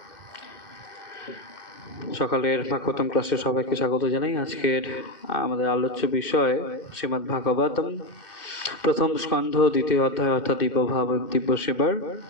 সকালের ভাগবতম ক্লাসে সবাইকে স্বাগত জানাই। আজকের আমাদের আলোচ্য বিষয় শ্রীমদ্ ভাগবতম প্রথম স্কন্ধ দ্বিতীয় অধ্যায় অর্থাৎ দিব্যভাব দিব্য সেবার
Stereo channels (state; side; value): late; right; 2.1 ms